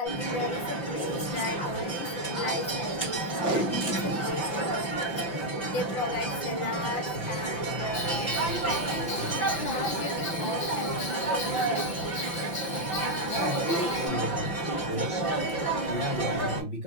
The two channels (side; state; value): right; late; 5.9 ms